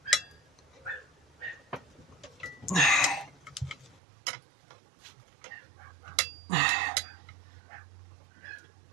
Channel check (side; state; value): left; drops out; at 4.0 s